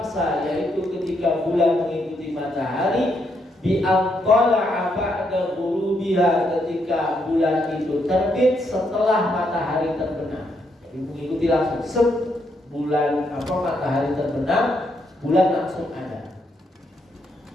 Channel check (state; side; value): normal; both; correlation 0.77